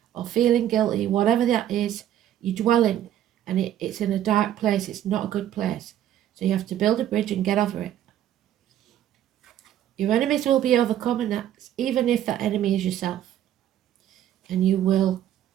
or feeling guilty, whatever that is. You're dwelling and it's in a dark place. It's not a good place. So you have to build a bridge and get over it. Your enemies will be overcome, and that's even if that enemy is yourself. And you will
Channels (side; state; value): left; quieter; 11.4 dB